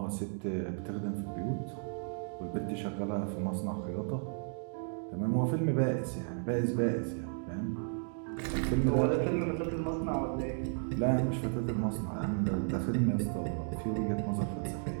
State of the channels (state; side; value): silent; left; 55 dB below the other